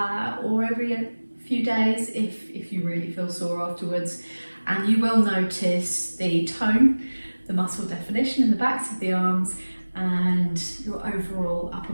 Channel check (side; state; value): both; inverted; correlation -1.00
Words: or every few days if you really feel sore afterwards, and you will notice the tone, the muscle definition in the backs of the arms, and your overall upper